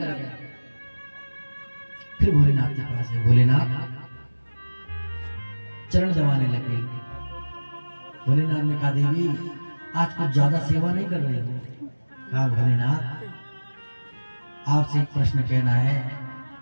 के। फिर भोलेनाथ के पास है, भोलेनाथ चरण दबाने लगे। भोलेनाथ ने कहा, देवी, आज कुछ ज्यादा सेवा नहीं कर रही हो। कहा, भोलेनाथ, आपसे एक प्रश्न कहना है,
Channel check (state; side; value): inverted; both; correlation -1.00